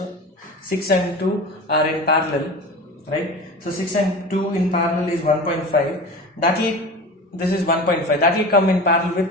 6 and 2 are in parallel, right? So 6 and 2 in parallel is 1.5. This is 1.5. That will come in parallel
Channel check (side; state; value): both; normal; correlation 0.33